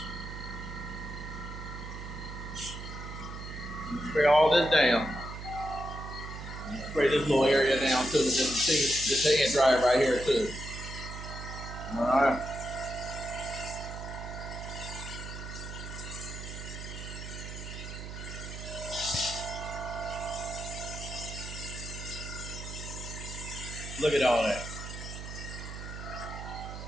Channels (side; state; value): right; noise; hum, 9 dB below the sound